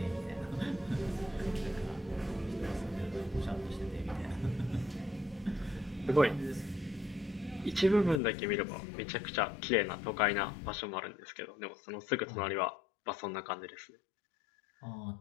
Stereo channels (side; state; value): right; drops out; at 8.2 s